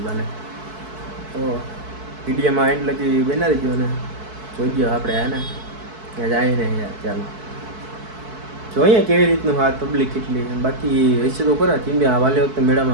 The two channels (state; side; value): late; left; 4.6 ms